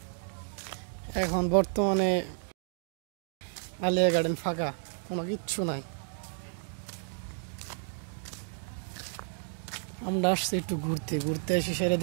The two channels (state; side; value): silent; left; digital silence